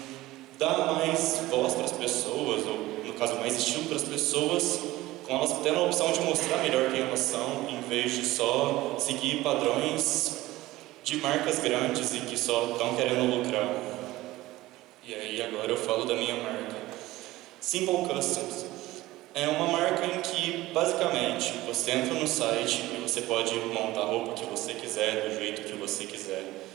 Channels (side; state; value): left; quieter; 17.6 dB